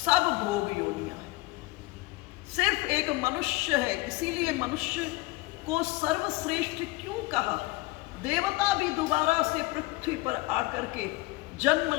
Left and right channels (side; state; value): right; quieter; 21.6 dB